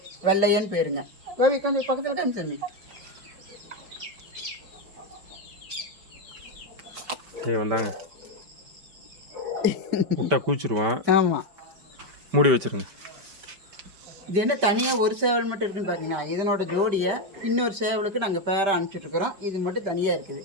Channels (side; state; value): left; late; 5.1 ms